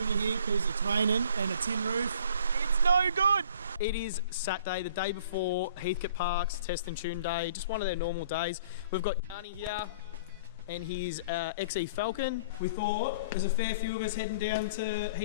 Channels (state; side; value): inverted; both; correlation -0.52